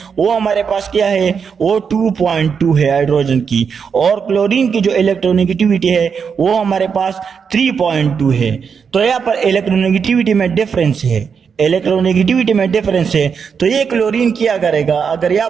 वो हमारे पास क्या है, वो 2.2 है हाइड्रोजन की, और क्लोरीन की जो इलेक्ट्रोनेगेटिविटी है वो हमारे पास 3.2 है। तो यहाँ पर इलेक्ट्रोनेगेटिविटी में डिफरेंस है, इलेक्ट्रोनेगेटिविटी में डिफरेंस है। तो ये क्लोरीन क्या करेगा, अगर यहाँ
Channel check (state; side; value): quieter; left; 6.4 dB